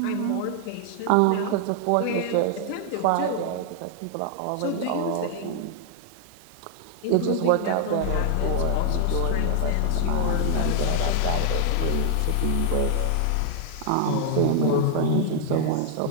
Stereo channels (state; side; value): different; both; correlation -0.01